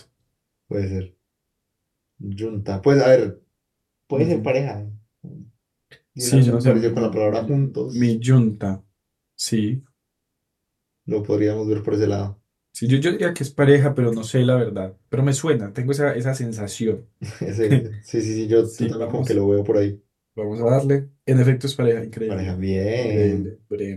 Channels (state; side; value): identical; both; correlation 1.00